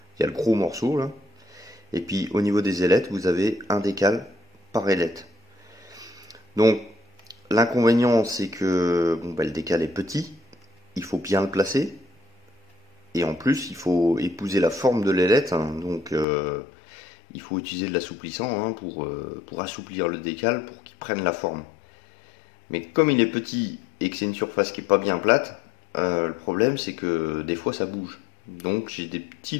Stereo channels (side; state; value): right; drops out; at 16.2 s